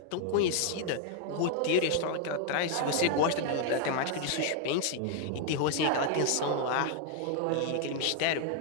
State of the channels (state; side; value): different; both; correlation 0.00